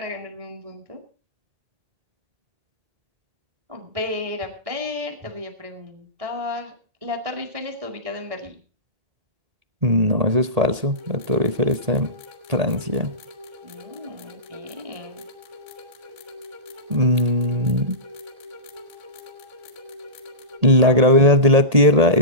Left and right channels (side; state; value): left; late; 1.8 ms